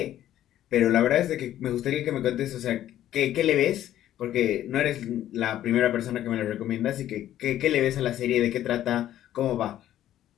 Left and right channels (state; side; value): quieter; right; 12.4 dB